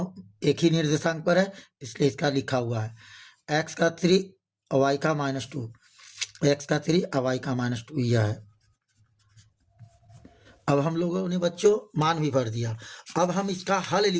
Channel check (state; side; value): identical; both; correlation 1.00